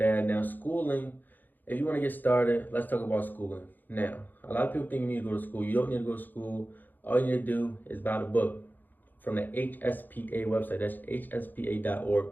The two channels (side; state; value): right; late; 0.087 ms